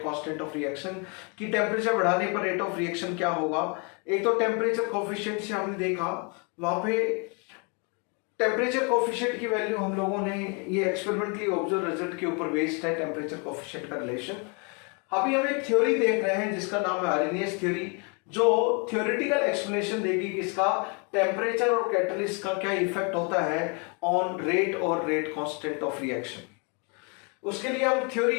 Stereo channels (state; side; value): quieter; right; 34.5 dB